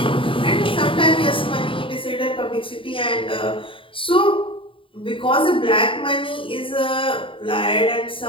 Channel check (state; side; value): late; right; 0.25 ms